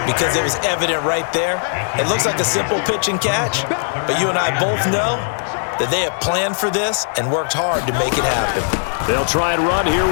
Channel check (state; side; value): silent; right; digital silence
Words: because it was evident right there. It looks like a simple pitch and catch, but you and I both know that they have planned for this and worked hard to make it happen. They'll try and run here